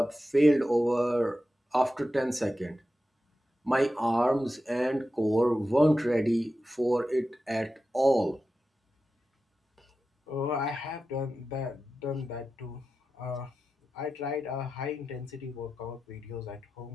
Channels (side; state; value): both; normal; correlation 0.92